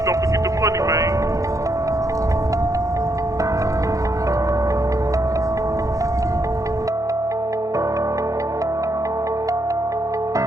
don't forget the money, man.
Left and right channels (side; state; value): left; late; 0.16 ms